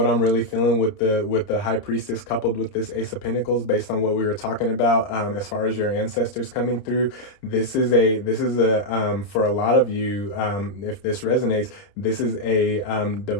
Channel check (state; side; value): late; right; 29 ms